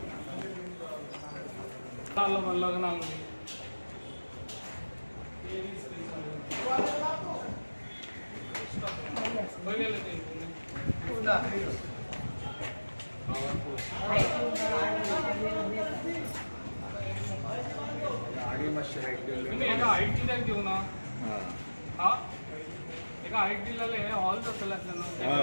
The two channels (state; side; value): inverted; both; correlation -1.00